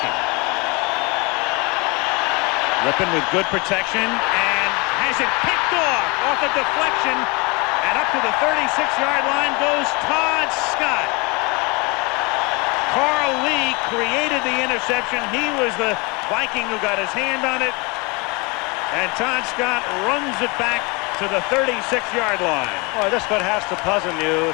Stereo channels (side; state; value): right; quieter; 27.4 dB